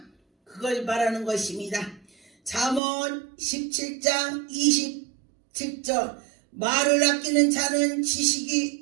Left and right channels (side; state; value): left; drops out; at 2.8 s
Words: 그걸 말하는 것입니다. 잠언 17장 27절 말을 아끼는 자는